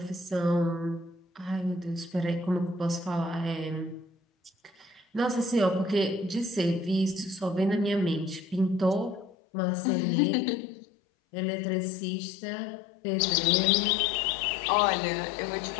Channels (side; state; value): right; drops out; at 9.3 s